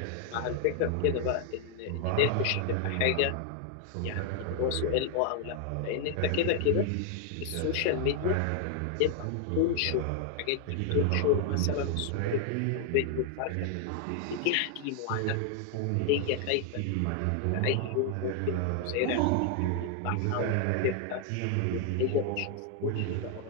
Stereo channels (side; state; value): both; different; correlation 0.00